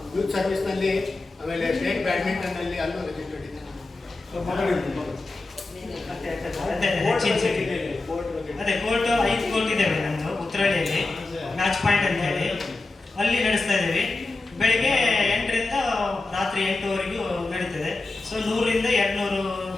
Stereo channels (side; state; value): right; quieter; 3.3 dB